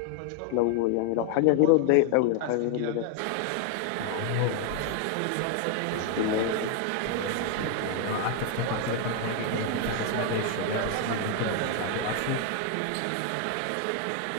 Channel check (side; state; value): both; different; correlation 0.00